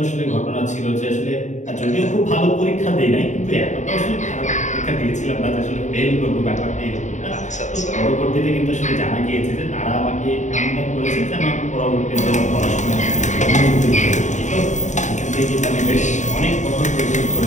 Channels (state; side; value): late; right; 0.35 ms